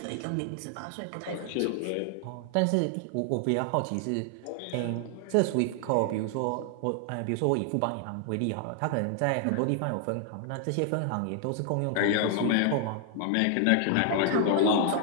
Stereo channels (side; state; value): both; different; correlation 0.00